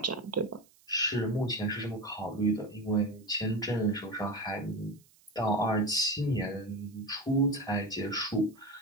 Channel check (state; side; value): noise; right; hiss, 29 dB below the sound